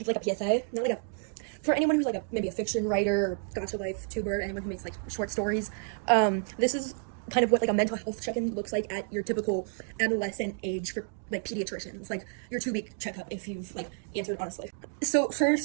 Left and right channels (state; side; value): silent; left; 58 dB below the other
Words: give like a PSA, not like a for anyone who's like maybe a fiction writer, or gotcha life tuber, anyone who makes like short stories. This is kind of what like a mental health check-in looks like at your typical adolescent age for like pediatricians, like your 2-week checkup if you've like answered honestly. So